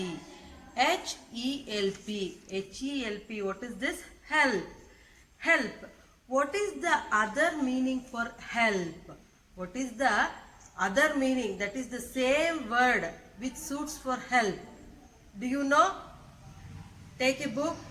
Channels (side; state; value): both; identical; correlation 1.00